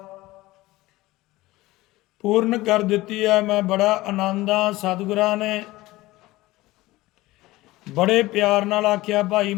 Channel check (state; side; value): quieter; right; 18.7 dB